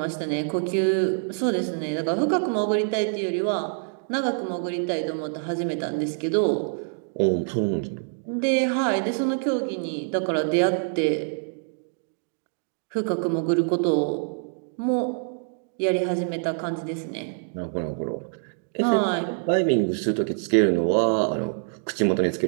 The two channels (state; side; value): silent; left; digital silence